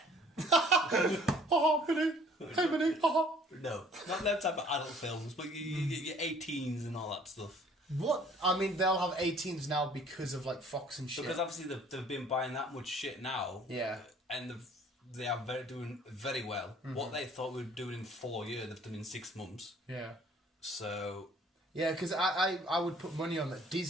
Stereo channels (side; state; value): both; normal; correlation 0.55